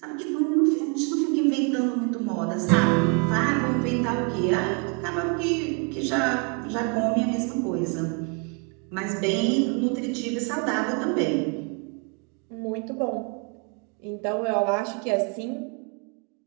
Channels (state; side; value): quieter; left; 35.1 dB